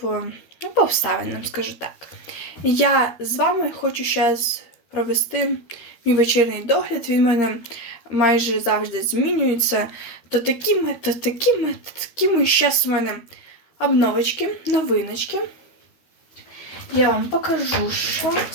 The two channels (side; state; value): right; late; 13 ms